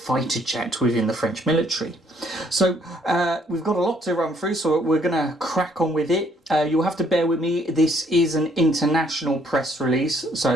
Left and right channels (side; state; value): both; normal; correlation 0.66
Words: jet within the French military. So we've got a lot to run through, so we're going to crack on with it. You'll have to bear with me, this is an international press release,